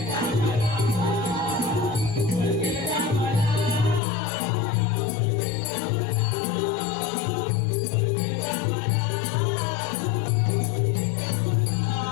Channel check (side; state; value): right; drops out; at 4.0 s